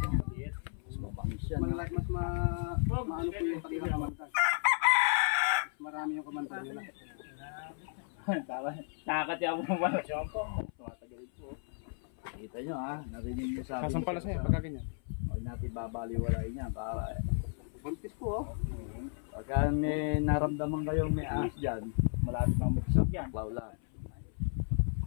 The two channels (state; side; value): silent; right; 55 dB below the other